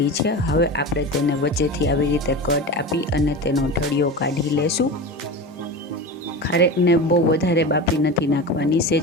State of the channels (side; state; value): both; normal; correlation 0.28